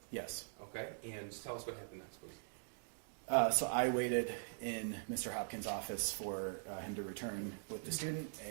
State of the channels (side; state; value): left; silent; digital silence